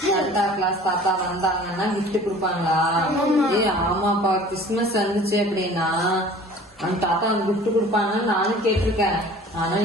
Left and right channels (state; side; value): normal; both; correlation 0.46